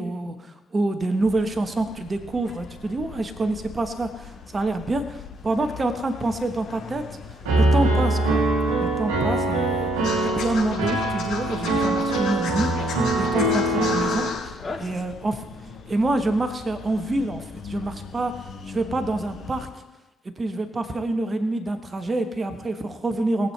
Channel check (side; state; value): both; normal; correlation 0.76